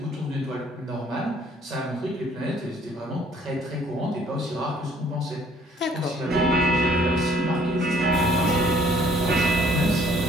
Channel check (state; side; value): normal; both; correlation 0.60